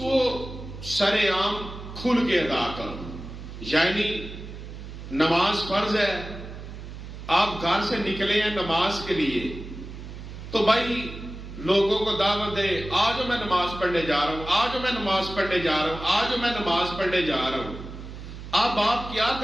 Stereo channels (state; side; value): noise; right; hum, 11 dB below the sound